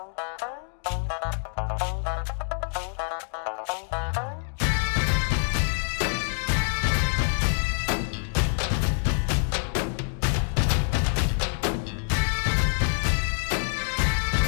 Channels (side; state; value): right; silent; 59 dB below the other